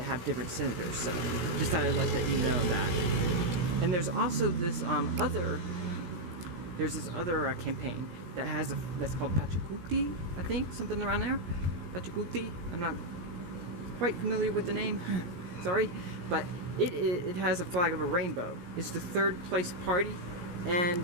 have different senators, so just thought I'd let you know that. And there's also this other campaign that that's called Pachacuti, I think, something around there. Pachacuti. I'm not quite familiar with the name, sorry, but it has a flag of a rainbow. It's the third place party, and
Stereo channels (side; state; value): left; late; 17 ms